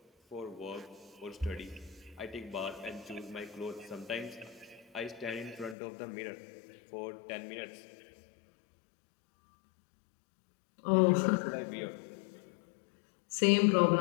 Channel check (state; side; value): drops out; right; at 5.8 s